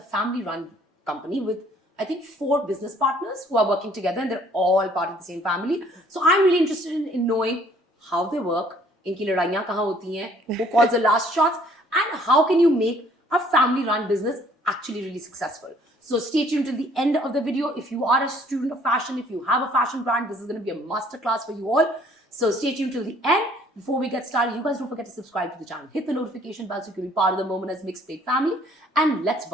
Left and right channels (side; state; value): both; normal; correlation 0.59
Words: family-run company with I think 4 business partners who are working together and they're all part of the same family. So I'm really interested in knowing how they work, inki ladaiyan kahan hoti hain, who calls the last shots, and how can you make a family-run business actually really successful. So stay tuned till the end of the video. If you are a student of fashion, if you have a fashion brand, this is going to be a masterclass for you all. So stay tuned till the end. Before we get started, you guys don't forget to subscribe to the channel. Hit the notification bell so you can be part of the Momina's Mixtape family. And let's